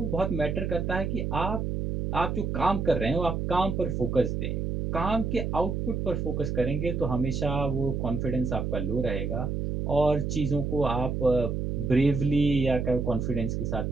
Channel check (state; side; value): noise; right; hum, 1 dB below the sound